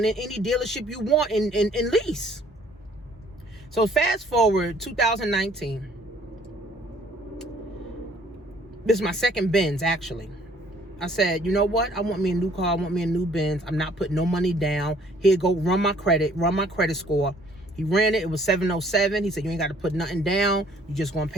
any dealership you want and lease. So fast forward 2019. This is my second Benz, actually. I said, you know what? I want me a new car. I want me a new Benz. I'm not putting no money down. Here, go run my credit score. He ran it. It was 707. He said, you ain't got to put nothing down. You just going to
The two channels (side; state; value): both; normal; correlation 0.59